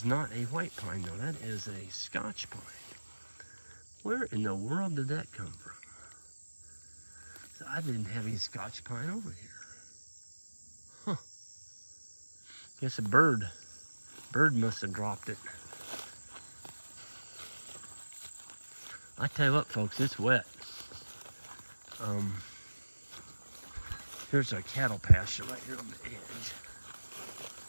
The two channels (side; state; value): both; inverted; correlation -1.00